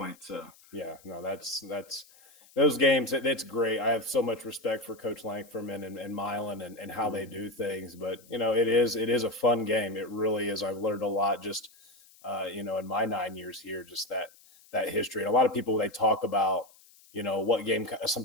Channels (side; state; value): left; noise; hiss, 26 dB below the sound